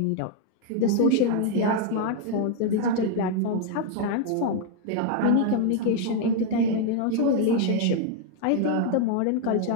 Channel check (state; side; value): different; both; correlation 0.00